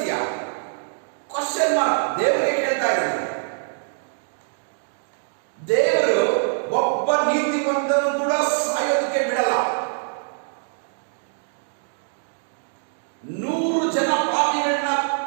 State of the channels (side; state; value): left; silent; digital silence